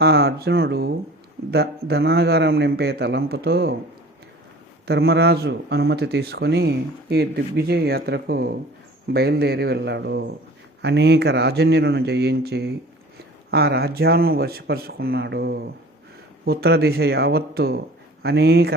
ఆ అర్జునుడు ధనాగారం నింపే తలంపుతో ధర్మరాజు అనుమతి తీసుకొని ఈ దిగ్విజయ యాత్రకు బయలుదేరి వెళ్ళాడు. అనేక రాజన్యులను జయించి ఆ రాజ్యాలను వశపరుచుకున్నాడు. ఉత్తర దిశ యావత్తు అనేక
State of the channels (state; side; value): normal; both; correlation 0.45